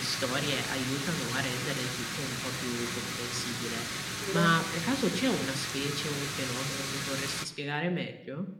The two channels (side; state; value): both; identical; correlation 1.00